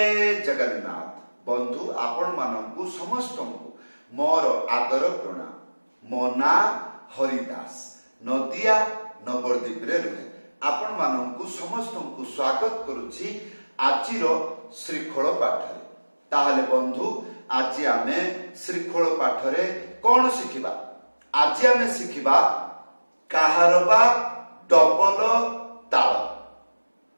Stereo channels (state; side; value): inverted; both; correlation -1.00